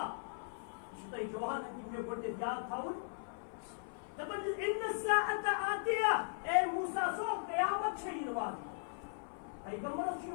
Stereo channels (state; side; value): silent; right; 52 dB below the other